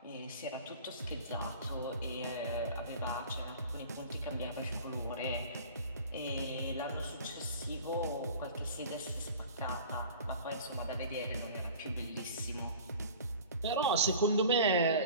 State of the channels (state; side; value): inverted; both; correlation -0.42